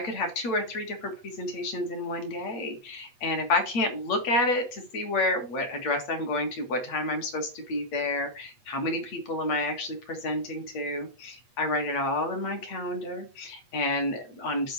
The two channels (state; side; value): late; right; 8.3 ms